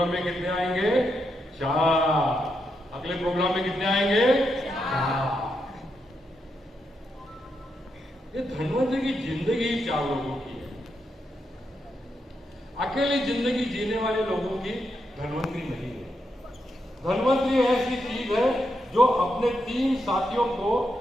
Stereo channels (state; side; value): normal; both; correlation 0.83